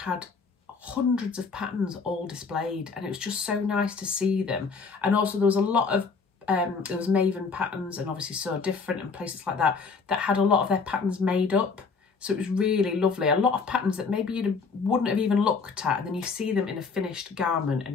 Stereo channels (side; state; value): right; quieter; 4.9 dB